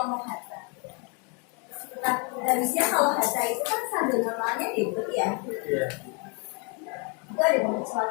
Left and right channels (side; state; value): right; quieter; 34.5 dB